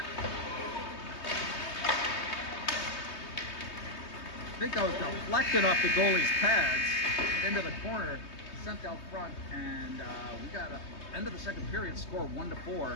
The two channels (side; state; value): right; late; 3.2 ms